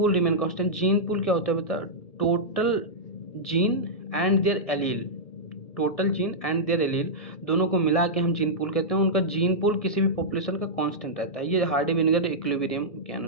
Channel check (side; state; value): right; late; 1.7 ms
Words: remain constant, gene pool क्या होता है बता, total gene and their allele, total gene and their allele दोनों को मिला के हम जीन पूल कहते हैं, उनका जीन पूल किसी भी पॉपुलेशन का कांस्टेंट रहता है, ये हार्डी वीनबर्ग इक्विलिब्रियम के